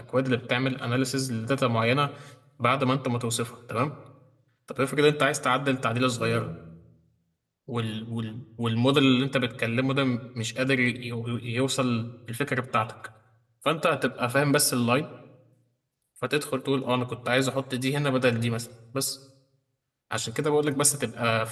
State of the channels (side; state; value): both; identical; correlation 1.00